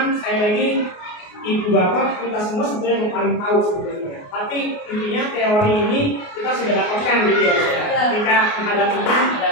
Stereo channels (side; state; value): right; late; 28 ms